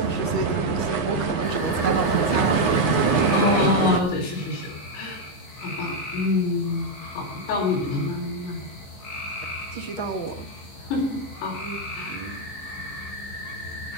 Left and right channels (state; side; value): late; right; 15 ms